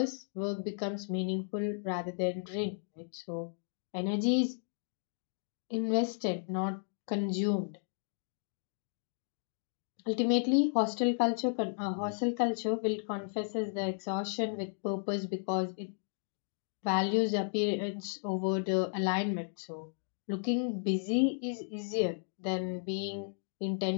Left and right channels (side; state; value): right; silent; digital silence